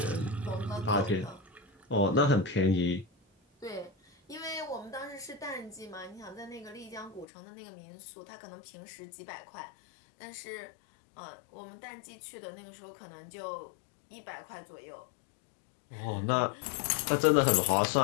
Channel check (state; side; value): drops out; right; at 7.2 s